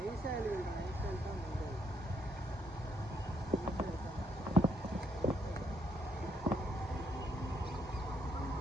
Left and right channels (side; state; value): both; normal; correlation 0.74